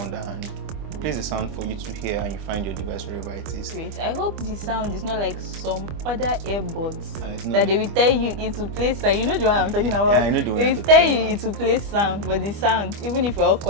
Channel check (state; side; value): late; left; 25 ms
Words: and plays the sound for you to hear and you find your device wherever it is. Wait, I hope the sound is not like some other earbuds It's that not they will tell you into place sound. You know the one I'm talking about? Yeah, I know the one They you're will tell talking you about. into place sound, but the sound, even if we're all